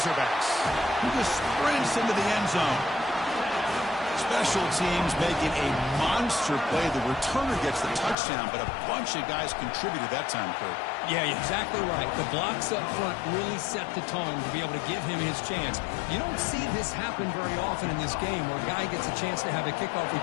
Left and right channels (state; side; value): drops out; right; at 8.2 s